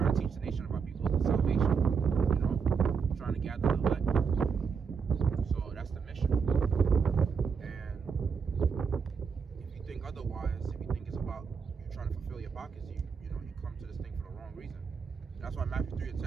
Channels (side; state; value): left; quieter; 5.9 dB